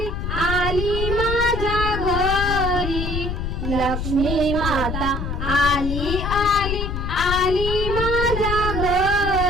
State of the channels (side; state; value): left; noise; rumble, 3 dB below the sound